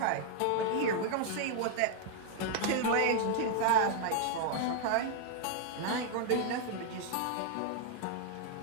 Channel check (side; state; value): both; different; correlation 0.00